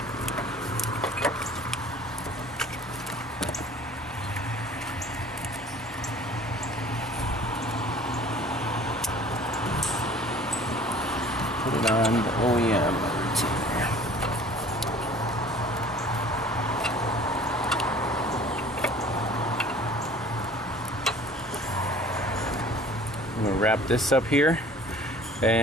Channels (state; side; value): normal; both; correlation 0.48